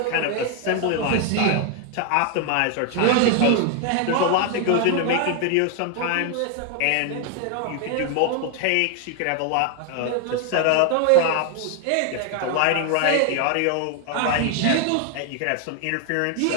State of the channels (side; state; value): both; different; correlation 0.00